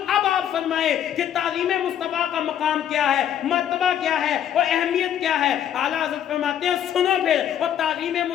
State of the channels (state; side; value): quieter; right; 10.0 dB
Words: اب آپ فرمائے کہ تعظیم مصطفیٰ کا مقام کیا ہے, مرتبہ کیا ہے اور اہمیت کیا ہے. اعلیٰ حضرت فرماتے ہیں سنو پھر, اور تعظیم